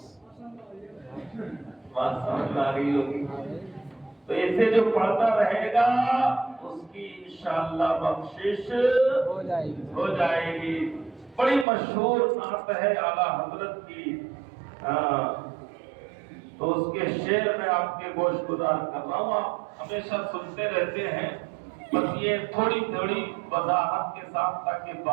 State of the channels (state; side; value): drops out; left; at 11.7 s